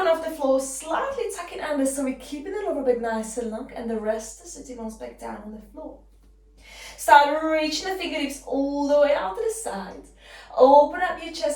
off the floor, slightly tuck it under so we're keeping the lower back nice and long, and the rest of the sitting bones back down on the floor. Start reaching the fingertips all the way out to the side. Open up your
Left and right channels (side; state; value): both; identical; correlation 1.00